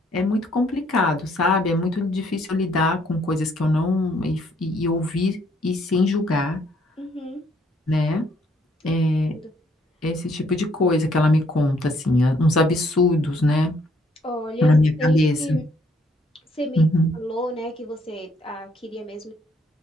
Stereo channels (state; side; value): normal; both; correlation 0.67